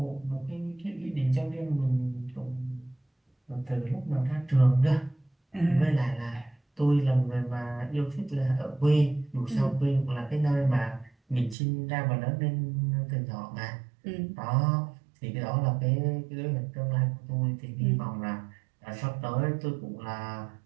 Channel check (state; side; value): drops out; left; at 11.6 s